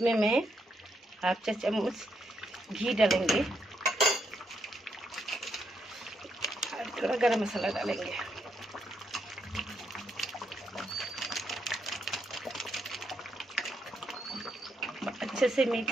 मैं हाफ चम्मच घी डालेंगे और थोड़ा गरम मसाला डालेंगे। अच्छे से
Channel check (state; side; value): normal; both; correlation 0.79